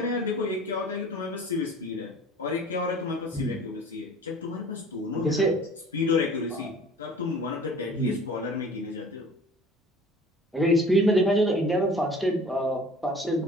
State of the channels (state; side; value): normal; both; correlation 0.46